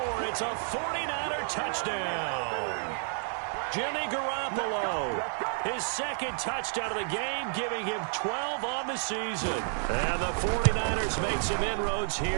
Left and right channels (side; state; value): left; silent; 58 dB below the other